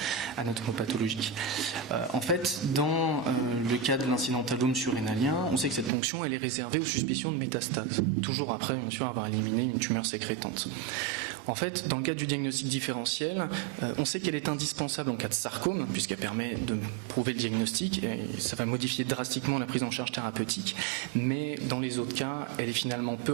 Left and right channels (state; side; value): drops out; left; at 5.9 s